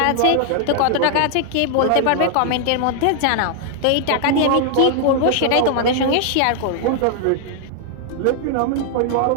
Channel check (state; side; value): different; both; correlation 0.00